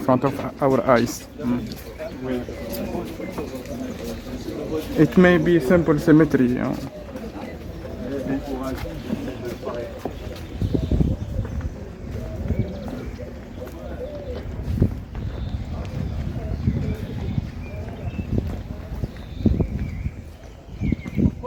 of our eyes. It may be simple symmetry. You know. Of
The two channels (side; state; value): both; identical; correlation 1.00